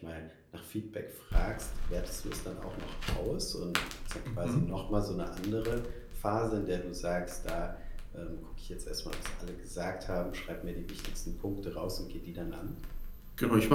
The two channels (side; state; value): both; identical; correlation 1.00